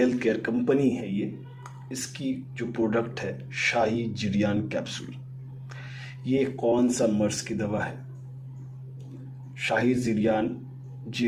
केयर कंपनी है ये। इसकी जो प्रोडक्ट है शाही जिरियान कैप्सूल। ये कौन सा मर्ज की दवा है? शाही जिरियान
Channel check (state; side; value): identical; both; correlation 1.00